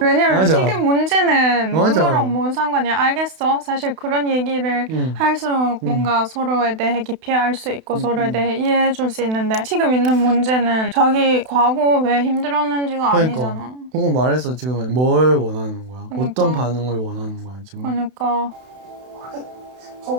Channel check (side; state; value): left; late; 32 ms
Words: 왜냐면 맞아. 지금 문제는 맞아. 그거랑 뭔 상관이야. 알겠어. 사실 그런 얘기를 할수록 뭔가 서로에 대해 깊이 알 수 있고 서로에 대해 이해해 줄 수 있는데 지금 있는 문제는 자기 과거 왜 힘들었는지가 아니잖아. 그거 말해서 지금 뭘 원하는 거야? 그러니까. 어떤 반응을 원하는 거야 지금? 그러니까